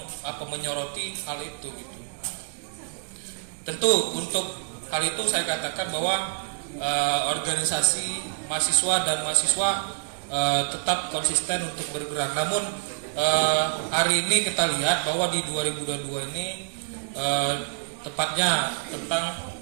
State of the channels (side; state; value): left; silent; digital silence